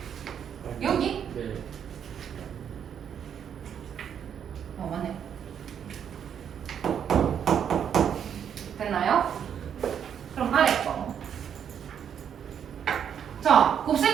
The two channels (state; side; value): quieter; left; 8.4 dB